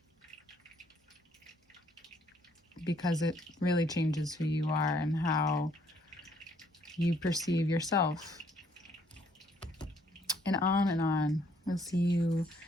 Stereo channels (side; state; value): both; normal; correlation 0.66